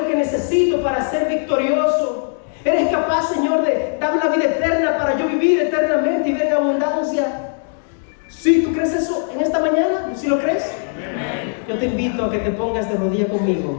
que necesito para ser victorioso. Eres capaz, Señor, de darme la vida eterna para yo vivir eternamente y ver en abundancia. ¿Sí? ¿Tú crees eso en esta mañana? ¿Sí lo crees? Yo te invito a que te pongas de rodillas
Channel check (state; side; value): silent; right; digital silence